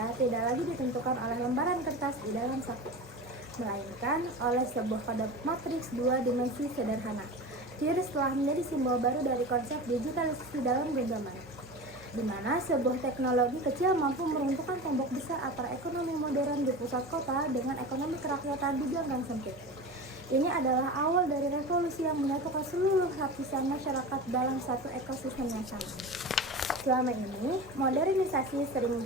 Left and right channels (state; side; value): noise; right; hum, 26 dB below the sound